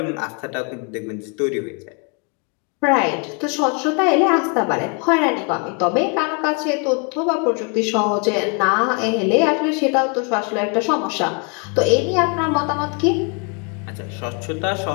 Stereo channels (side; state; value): right; quieter; 35.0 dB